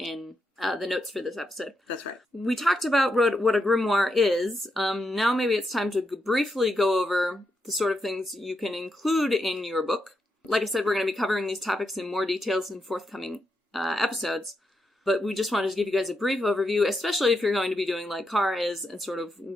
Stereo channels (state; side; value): normal; both; correlation 0.84